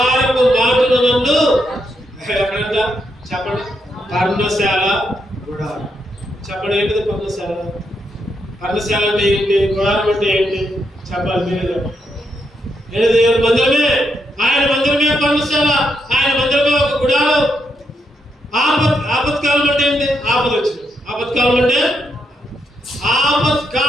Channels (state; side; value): normal; both; correlation 0.80